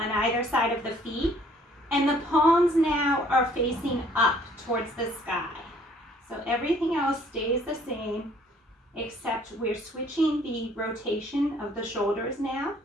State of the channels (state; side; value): normal; both; correlation 0.59